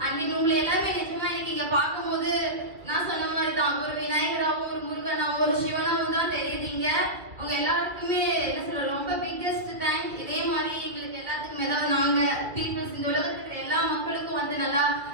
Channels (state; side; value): late; left; 2.1 ms